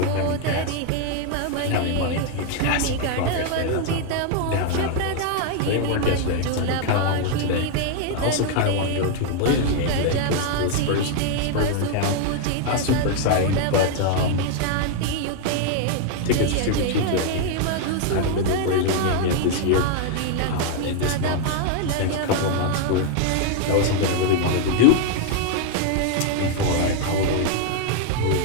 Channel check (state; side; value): different; both; correlation 0.00